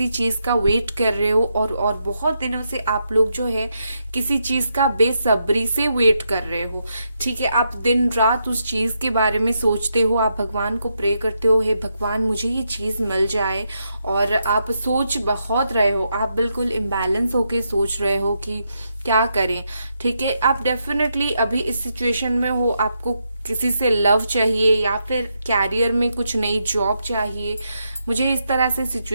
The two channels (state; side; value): inverted; both; correlation -0.81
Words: चीज का वेट कर रहे हो और बहुत दिनों से आप लोग जो है किसी चीज का बेसब्री से वेट कर रहे हो। ठीक है, आप दिन रात उस चीज के बारे में सोचते हो, आप भगवान को प्रे करते हो, हे भगवान मुझे ये चीज मिल जाए। और आप सोच बहुत रहे हो, आप बिल्कुल इम्बैलेंस होके सोच रहे हो कि क्या करें। ठीक है, आप डेफिनेटली अभी इस सिचुएशन में हो, आपको किसी से लव चाहिए या फिर कैरियर में कुछ नई जॉब चाहिए। मुझे इस तरह से